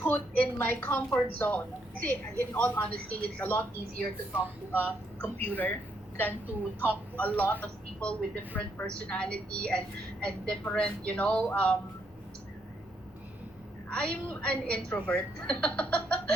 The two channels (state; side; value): normal; both; correlation 0.75